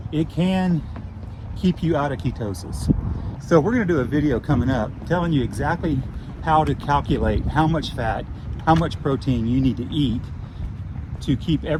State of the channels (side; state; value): both; identical; correlation 1.00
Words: it can keep you out of ketosis. So we're going to do a video coming up telling you exactly how to calculate how much fat, how much protein you need to eat to keep